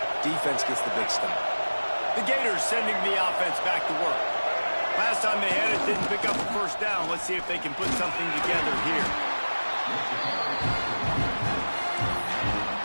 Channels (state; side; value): inverted; both; correlation -1.00